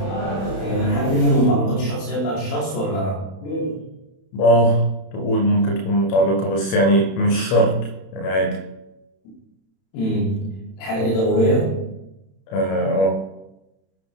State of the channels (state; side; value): late; right; 31 ms